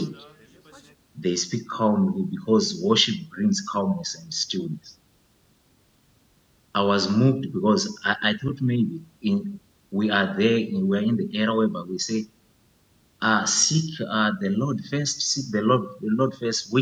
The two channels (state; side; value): identical; both; correlation 1.00